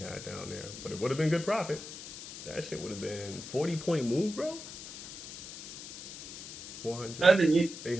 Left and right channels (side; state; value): left; noise; hiss, 12 dB below the sound